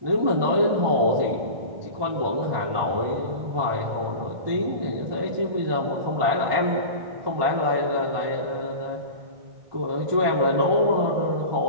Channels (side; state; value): left; late; 1.2 ms